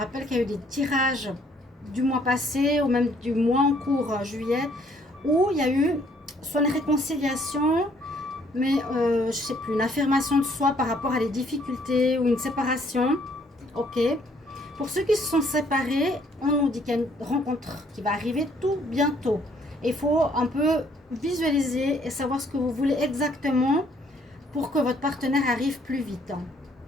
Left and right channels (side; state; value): both; normal; correlation 0.64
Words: qu'il y a eu des tirages du mois passé ou même du mois en cours, juillet, où il y a eu soit une réconciliation, mais je sais plus, une affirmation de soi par rapport à des difficultés ou une séparation. Ok. Pour ceux qui se sont séparés, on nous dit qu'il y a une rencontre qui va arriver tout bientôt. Il faut un peu visualiser et savoir ce que vous voulez exactement pour que votre partenaire arrive plus vite.